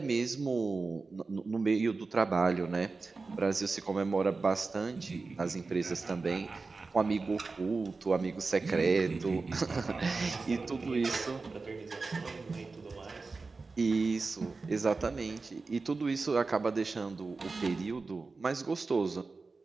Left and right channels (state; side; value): quieter; left; 4.0 dB